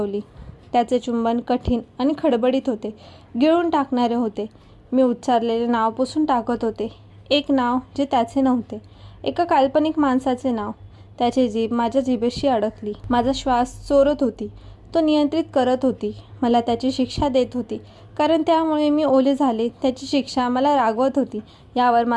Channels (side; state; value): both; identical; correlation 1.00